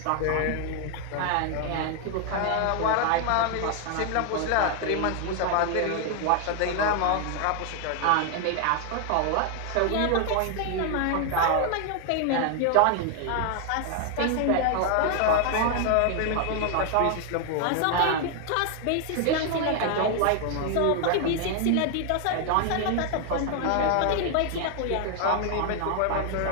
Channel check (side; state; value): both; different; correlation 0.00